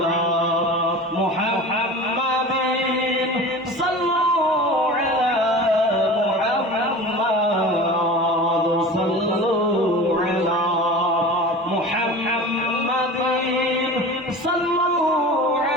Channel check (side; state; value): both; normal; correlation 0.35